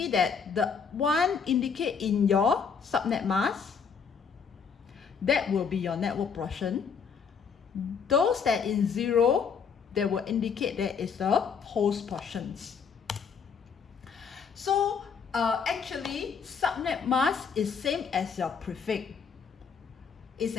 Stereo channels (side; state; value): right; quieter; 6.2 dB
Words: that the 1 indicate in your subnet mask, that will be your network portion. Those that in 0, they will indicate that is the host portions. So actually subnet mask is same as your prefix. It's